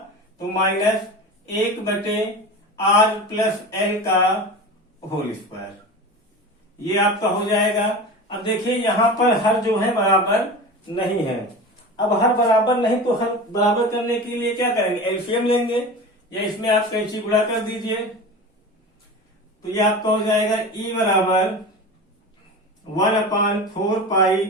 तो माइनस 1/R+L का होल स्क्वायर। ये आपका हो जाएगा। अब देखिए यहाँ पर हर जो है बराबर नहीं है। अब हर बराबर नहीं तो हर बराबर करने के लिए क्या करेंगे एलसीएम लेंगे या इसमें आप कैंची गुणा कर दीजिए। तो ये आपका हो जाएगा E बराबर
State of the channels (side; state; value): both; normal; correlation 0.31